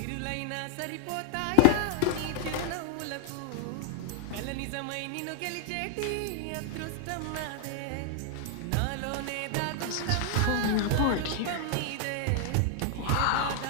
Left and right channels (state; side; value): different; both; correlation 0.00